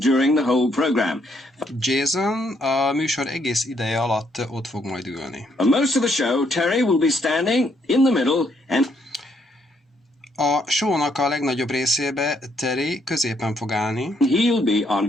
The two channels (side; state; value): both; normal; correlation 0.72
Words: the whole program. Jason a műsor egész ideje alatt ott fog majd ülni. For most of the show, Terry will be standing in the middle and A show-nak a legnagyobb részébe Terry középen fog állni, he'll be on